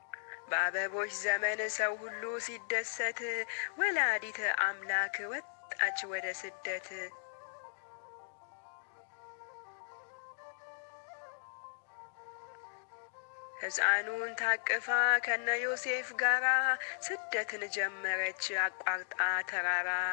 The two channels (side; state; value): right; silent; digital silence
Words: በአበቦች ዘመን ሰው ሁሉ ሲደሰት ወላዲተ አምላክ ወጣች ወደ ስደት። ሕፃኑን ታቅፋ ከነ ዮሴፍ ጋራ ስደትን ጀመረች አቋርጣ ተራራ።